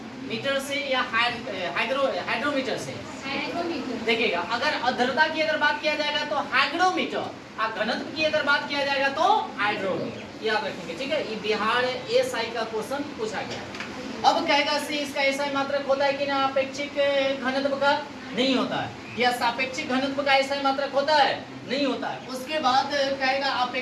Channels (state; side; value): identical; both; correlation 1.00